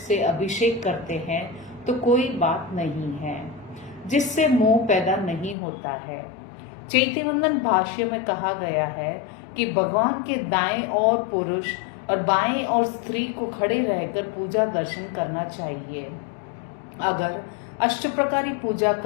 अभिषेक करते हैं, तो कोई बात नहीं है, जिससे मोह पैदा नहीं होता है। चैतन्यवंदन भाष्य में कहा गया है कि भगवान के दाएं ओर पुरुष और बाएं ओर स्त्री को खड़े रहकर पूजा दर्शन करना चाहिए। अगर अष्टप्रकारी पूजा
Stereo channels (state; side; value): drops out; right; at 5.6 s